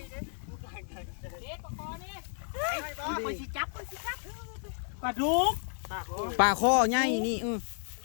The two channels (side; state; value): right; silent; 56 dB below the other